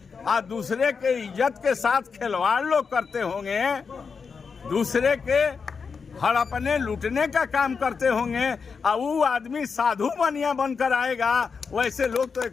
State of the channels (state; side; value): quieter; right; 5.5 dB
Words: दूसरे के इज्जत के साथ खिलवाड़ लोग करते होंगे, दूसरे के हड़पने लूटने का काम करते होंगे, वो आदमी साधु बनिया बनकर आएगा, वैसे लोग तो